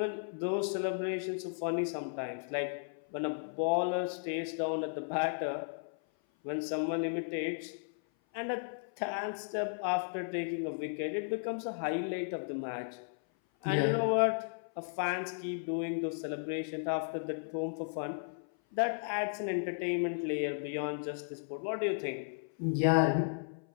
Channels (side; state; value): right; silent; 55 dB below the other